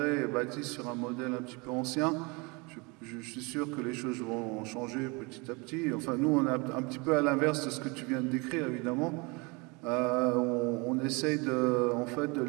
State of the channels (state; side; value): quieter; left; 28.3 dB